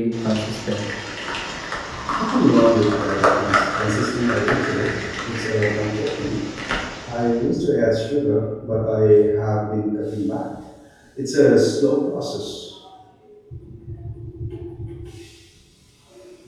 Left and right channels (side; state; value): both; identical; correlation 1.00